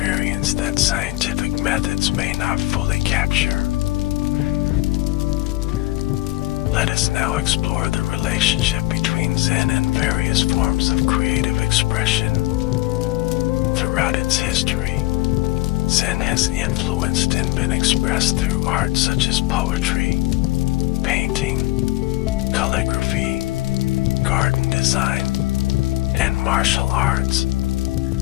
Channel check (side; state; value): right; quieter; 18.3 dB